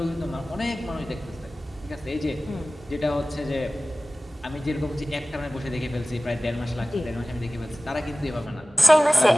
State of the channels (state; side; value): normal; both; correlation 0.97